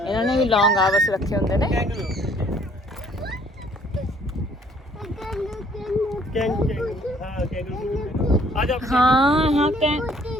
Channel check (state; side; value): normal; both; correlation 0.60